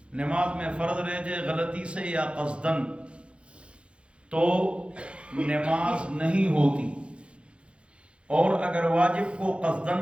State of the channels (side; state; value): left; late; 0.058 ms